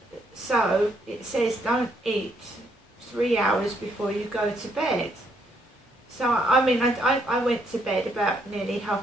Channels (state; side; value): normal; both; correlation 0.72